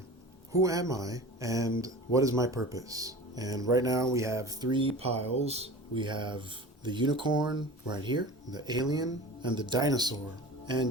Who am I and what is my purpose? And right now we have three piles. We have the unicorn right here, the alien, and the dinosaur.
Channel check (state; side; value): normal; both; correlation 0.36